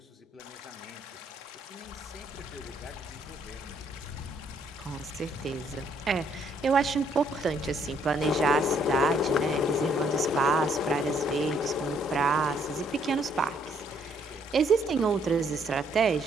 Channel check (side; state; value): both; normal; correlation 0.68